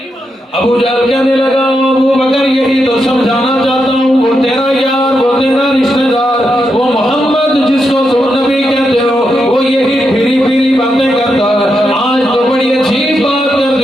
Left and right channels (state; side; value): normal; both; correlation 0.84